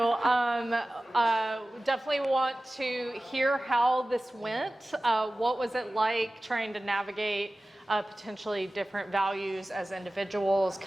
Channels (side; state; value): both; normal; correlation 0.97